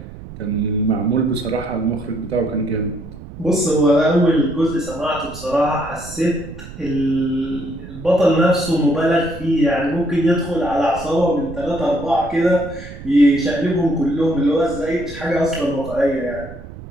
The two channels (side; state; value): right; noise; rumble, 14 dB below the sound